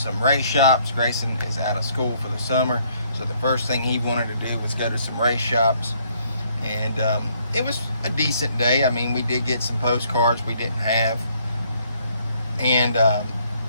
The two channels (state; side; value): inverted; both; correlation -0.66